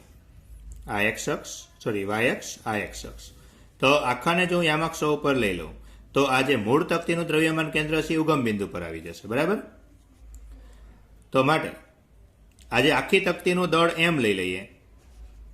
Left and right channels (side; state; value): both; identical; correlation 1.00